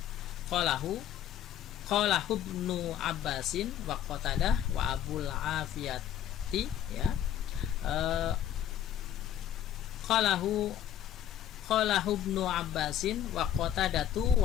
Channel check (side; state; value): right; quieter; 10.7 dB